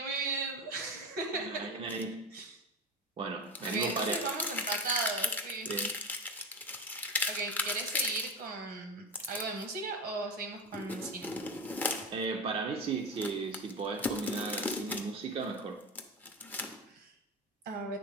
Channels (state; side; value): normal; both; correlation 0.21